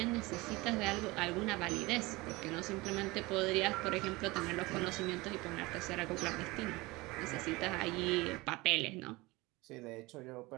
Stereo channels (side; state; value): left; quieter; 22.3 dB